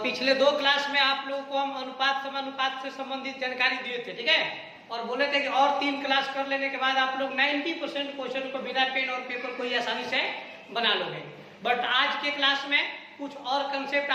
पिछले दो क्लास में आप लोगों को हम अनुपात समानुपात से संबंधित जानकारी दिए थे, ठीक है। और बोले थे कि और 3 क्लास कर लेने के बाद आप लोग 90% क्वेश्चन को बिना पेन और पेपर को ही आसानी से बना लोगे। बट आज के क्लास में कुछ और कंसेप्ट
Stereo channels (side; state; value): both; identical; correlation 1.00